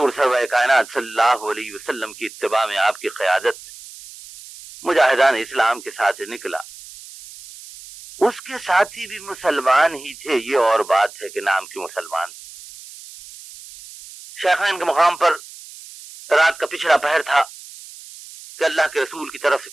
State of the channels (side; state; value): right; noise; hiss, 17 dB below the sound